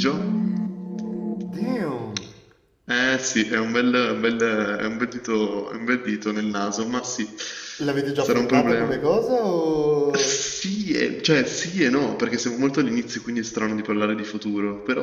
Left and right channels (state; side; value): identical; both; correlation 1.00